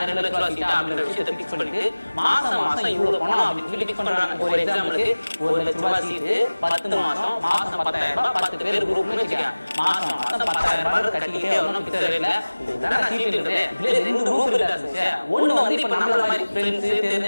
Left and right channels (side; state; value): both; inverted; correlation -1.00